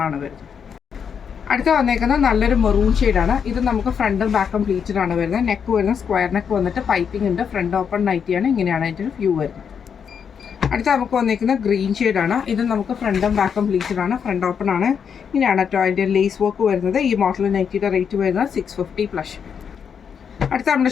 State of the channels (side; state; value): right; quieter; 7.1 dB